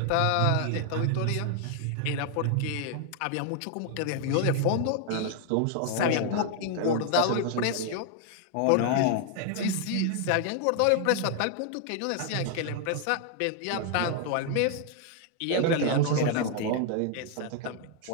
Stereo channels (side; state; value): both; different; correlation 0.00